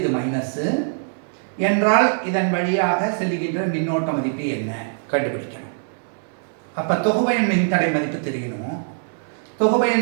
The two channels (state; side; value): silent; left; 64 dB below the other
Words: மைனஸ் என்றால் இதன் வழியாக செல்லுகின்ற மின்னோட்ட மதிப்பு என்ன கண்டுபிடிக்கணும். அப்போ தொகுபயன் மின்தடை மதிப்பு தெரியணும்.